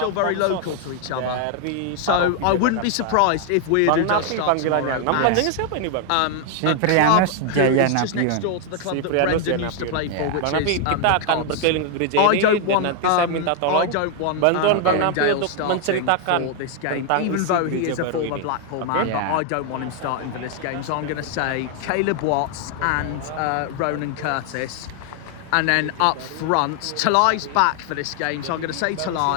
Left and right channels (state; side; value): different; both; correlation 0.00